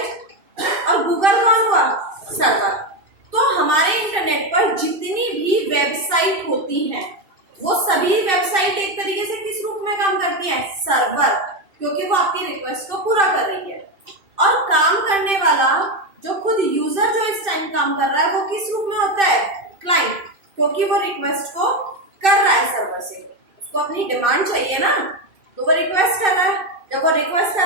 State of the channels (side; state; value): left; late; 2.6 ms